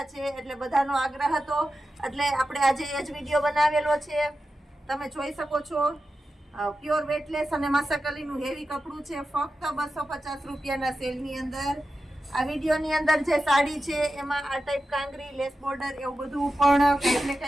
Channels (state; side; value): normal; both; correlation 0.91